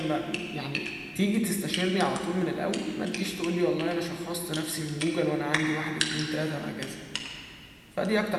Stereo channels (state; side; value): identical; both; correlation 1.00